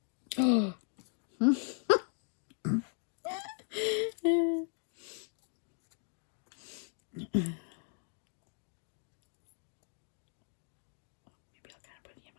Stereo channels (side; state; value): right; silent; 53 dB below the other